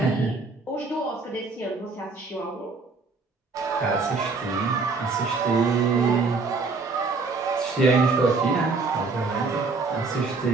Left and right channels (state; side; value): quieter; left; 4.1 dB